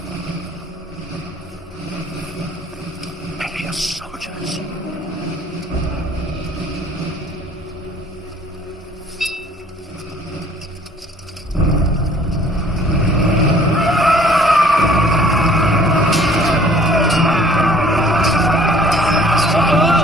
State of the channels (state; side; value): normal; both; correlation 0.55